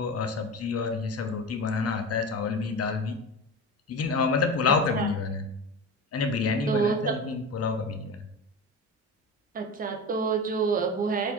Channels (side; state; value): both; normal; correlation 0.28